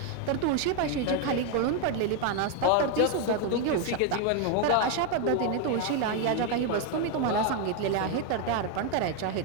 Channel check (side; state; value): both; different; correlation 0.01